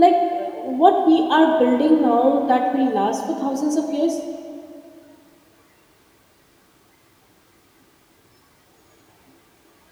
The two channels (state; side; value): identical; both; correlation 1.00